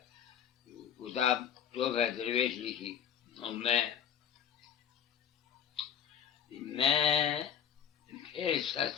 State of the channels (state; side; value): quieter; right; 8.5 dB